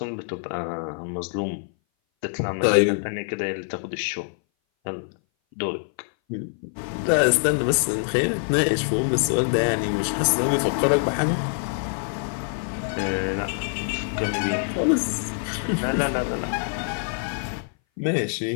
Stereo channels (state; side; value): silent; right; 58 dB below the other